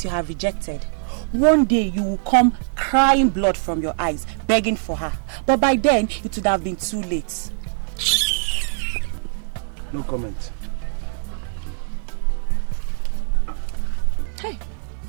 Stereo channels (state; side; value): silent; left; 64 dB below the other